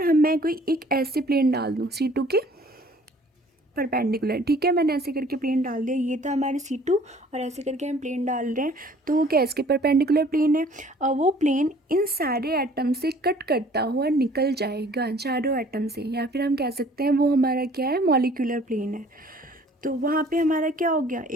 मैं कोई एक ऐसे प्लेन डाल दूँ C2 के परपेंडिकुलर, ठीक है, मैंने ऐसे करके प्लेन डाल दिया, ये था हमारे C2 और ऐसे करके हम प्लेन डाल रहे हैं, तो वो क्या इसके परपेंडिकुलर प्लेन है, और वो प्लेन इन सारे एटम से कट करता हुआ निकल जाएगा, चारों एटम से, या फिर हम कह सकते हैं वो हमारा क्या है, मॉलिक्यूलर प्लेन है। तो वहाँ पे हमारा क्या हो गया,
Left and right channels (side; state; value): both; normal; correlation 0.54